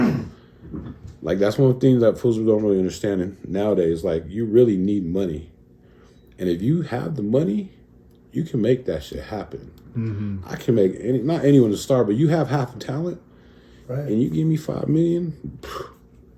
Like that's one thing that fools don't really understand nowadays. Like you really need money. And if you have the money, you can make that shit happen. Mm-hmm. I can make not anyone to start, but you have half the talent. Right. And you give me $5 million,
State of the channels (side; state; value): both; identical; correlation 1.00